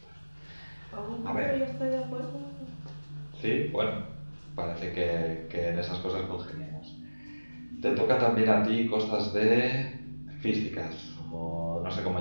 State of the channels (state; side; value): inverted; both; correlation -1.00